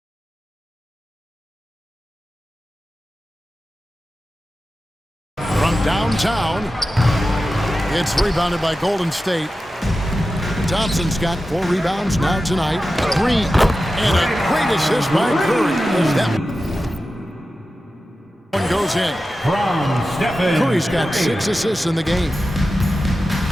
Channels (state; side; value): normal; both; correlation 0.93